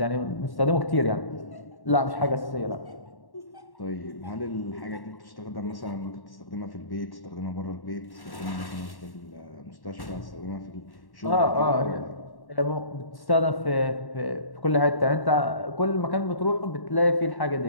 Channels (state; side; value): late; right; 1.1 ms